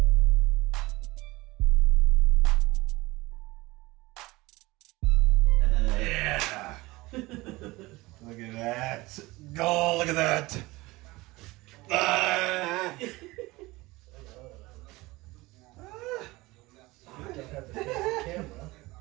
Yeah. Look at that. Go, look at that. Ah.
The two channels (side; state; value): left; quieter; 21.0 dB